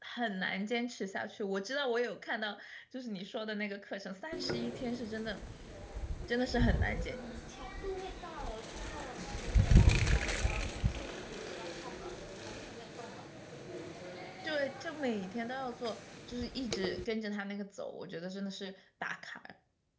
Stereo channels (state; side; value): identical; both; correlation 1.00